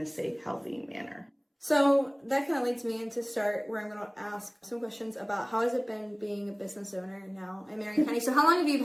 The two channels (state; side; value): identical; both; correlation 1.00